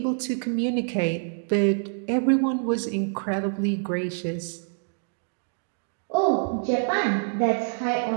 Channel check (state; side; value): silent; left; 61 dB below the other